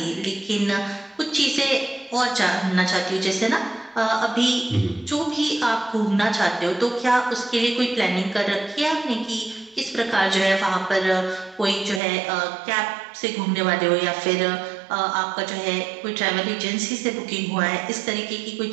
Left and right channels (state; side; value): drops out; left; at 12.0 s